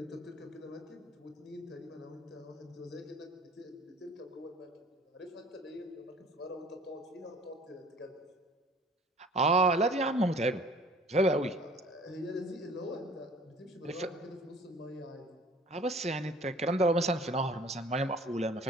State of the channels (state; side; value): normal; both; correlation 0.50